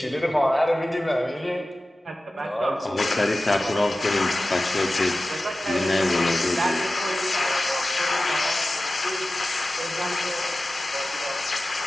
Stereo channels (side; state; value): both; normal; correlation 0.95